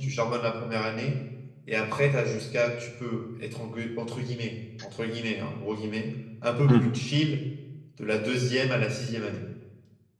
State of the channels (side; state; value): both; identical; correlation 1.00